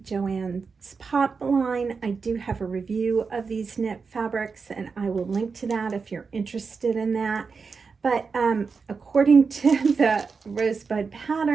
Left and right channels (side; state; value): left; quieter; 5.0 dB